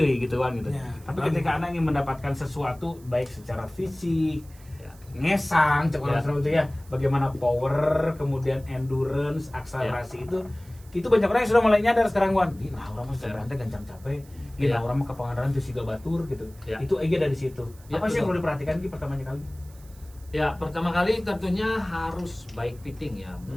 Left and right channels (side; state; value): right; noise; hiss, 26 dB below the sound